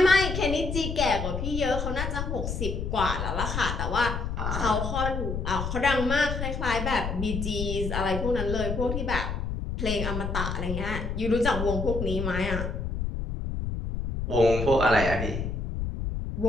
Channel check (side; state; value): left; noise; rumble, 3 dB below the sound